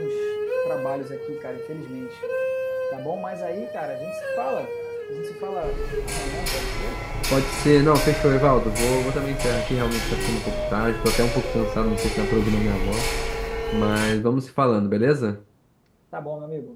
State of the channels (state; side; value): identical; both; correlation 1.00